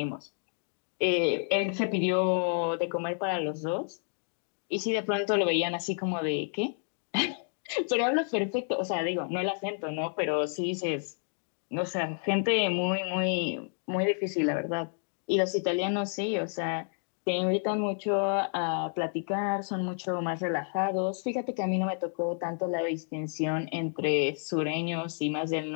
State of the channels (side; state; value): right; silent; 58 dB below the other